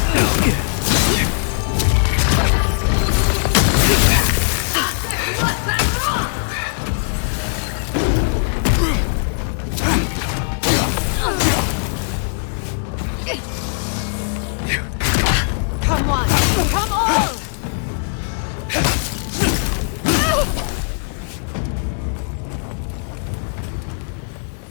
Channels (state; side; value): silent; right; digital silence